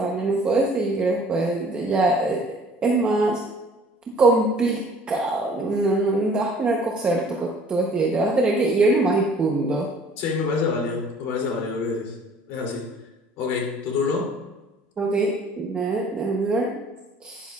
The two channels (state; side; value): normal; both; correlation 0.53